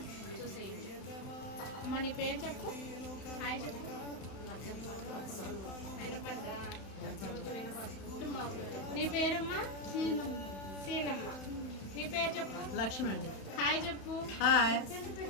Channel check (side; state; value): right; late; 31 ms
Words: చూసేయండి. అమ్మ నీ పేరు చెప్పు, హాయ్ చెప్పు. నీ పేరమ్మా? సీనమ్మ. నీ పేరు చెప్పు. లక్ష్మి అండి. హాయ్ చెప్పు. హాయ్.